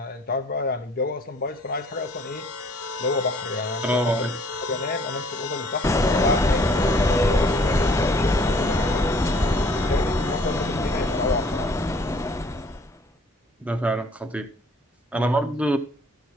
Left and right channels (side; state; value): both; normal; correlation 0.57